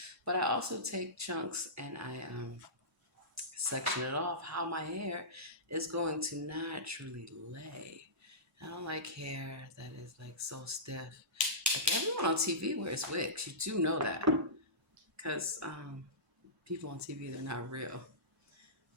But I also take chunks and I section it off how my hair is going to naturally lay. I don't like hair that is like so stiff. Like everyone on TV wears wigs. You do know that. Because people on TV, they're not real.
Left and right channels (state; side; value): normal; both; correlation -0.20